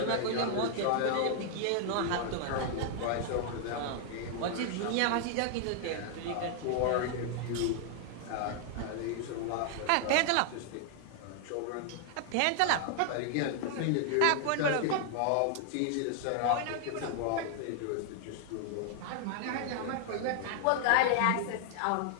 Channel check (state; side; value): different; both; correlation -0.01